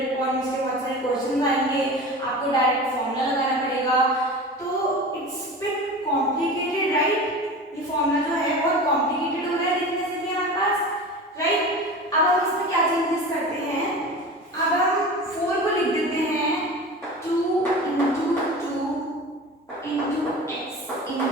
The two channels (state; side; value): normal; both; correlation 0.33